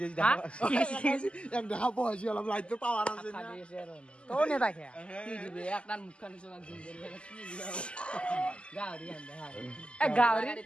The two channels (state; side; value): late; right; 0.053 ms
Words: হা এক দেখা পঢ়াইছি অলপ লাইটটো পাৱাৰ আছে তোৰ নেতাকে কি দিবি একটা মুখখান নিচনা জিম গাহৰি